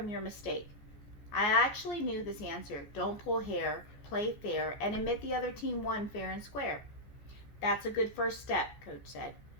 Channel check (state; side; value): late; right; 14 ms